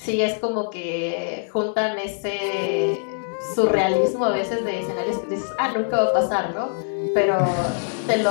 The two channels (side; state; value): right; silent; digital silence